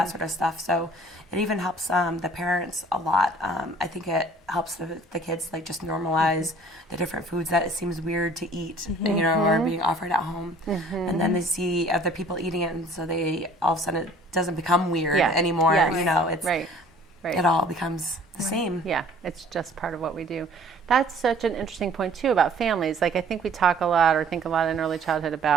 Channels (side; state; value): both; normal; correlation 0.52